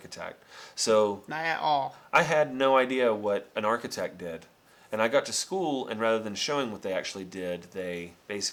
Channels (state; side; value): identical; both; correlation 1.00